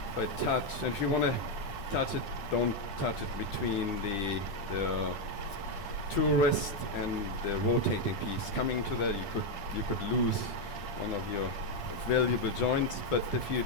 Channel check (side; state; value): right; late; 10 ms